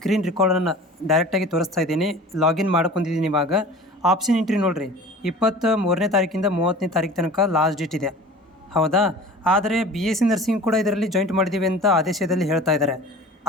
ರೆಕಾರ್ಡನ್ನು ಡೈರೆಕ್ಟಾಗಿ ತೋರಿಸ್ತಾ ಇದ್ದೀನಿ. ಲಾಗಿನ್ ಮಾಡ್ಕೊಂಡಿದ್ದೀನಿ. ಇವಾಗ ಆಪ್ಷನ್ ಎಂಟ್ರಿ ನೋಡಿರಿ, 23ನೇ ತಾರೀಕಿಂದ 30ನೇ ತಾರೀಕು ತನಕ ಲಾಸ್ಟ್ ಡೇಟ್ ಇದೆ, ಹೌದಾ? ಆದರೆ BSc ನರ್ಸಿಂಗ್ ಕೂಡ ಇದರಲ್ಲಿ ಜಾಯಿಂಟ್ ಮಾಡಿದ್ದೀವಿ ಅಂತ ಆದೇಶದಲ್ಲಿ ಹೇಳ್ತಾ ಇದ್ದಾರೆ.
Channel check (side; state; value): both; normal; correlation 0.41